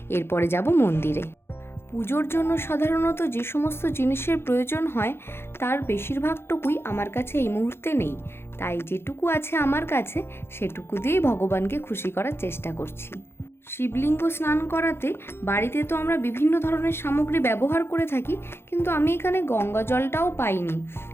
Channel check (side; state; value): right; late; 0.12 ms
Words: এরপরে যাব মন্দিরে। পুজোর জন্য সাধারণত যে সমস্ত জিনিসের প্রয়োজন হয় তার বেশিরভাগটুকুই আমার কাছে এই মুহূর্তে নেই, তাই যেটুকু আছে আমার কাছে সেটুকু দিয়েই ভগবানকে খুশি করার চেষ্টা করছি। শিবলিঙ্গ স্নান করাতে বাড়িতে তো আমরা বিভিন্ন ধরনের সামগ্রী ব্যবহার করে থাকি, কিন্তু আমি এখানে গঙ্গা জলটাও পাইনি,